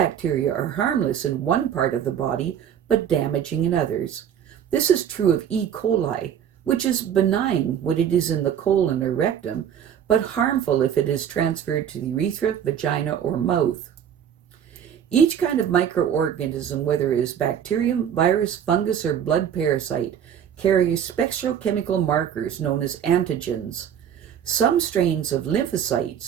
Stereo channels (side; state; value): left; quieter; 9.0 dB